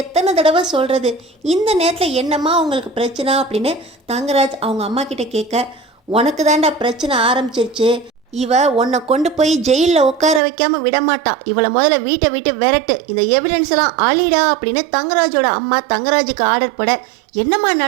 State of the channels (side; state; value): left; drops out; at 10.4 s